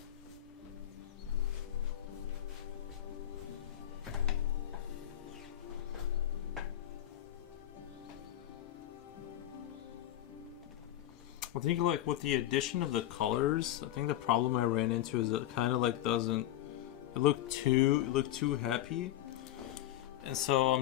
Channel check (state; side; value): quieter; right; 13.0 dB